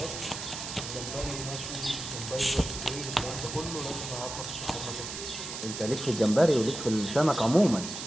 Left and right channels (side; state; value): right; noise; hiss, 7 dB below the sound